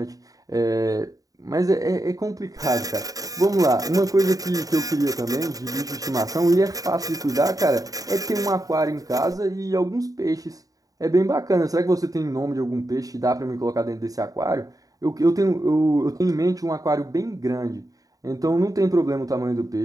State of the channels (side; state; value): left; late; 0.17 ms